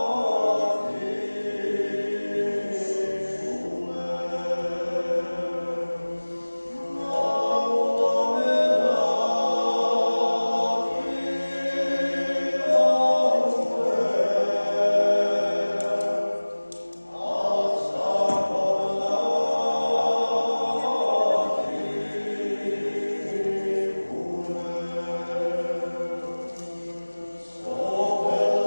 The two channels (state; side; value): inverted; both; correlation -1.00